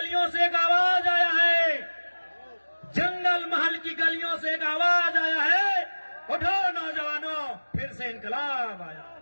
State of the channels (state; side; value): inverted; both; correlation -1.00